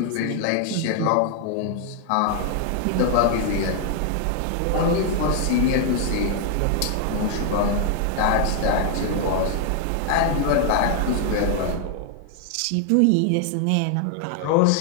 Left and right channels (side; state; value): both; different; correlation 0.00